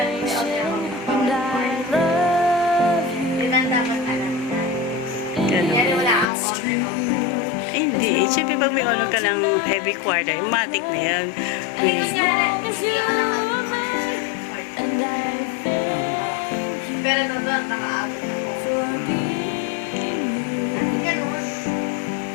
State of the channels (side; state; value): right; drops out; at 6.2 s